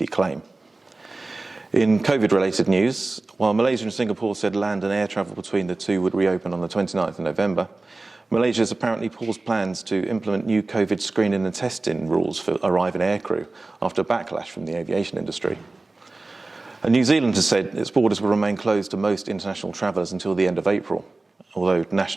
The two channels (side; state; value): left; quieter; 3.3 dB